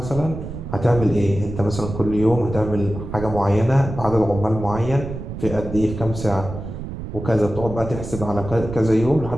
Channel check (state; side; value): noise; right; rumble, 8 dB below the sound